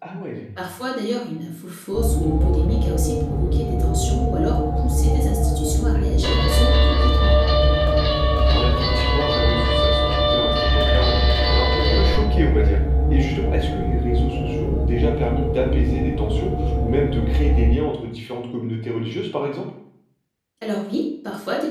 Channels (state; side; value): identical; both; correlation 1.00